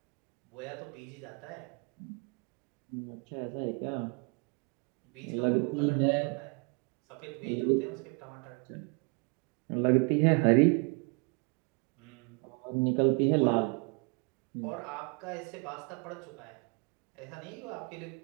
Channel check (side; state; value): left; quieter; 33.0 dB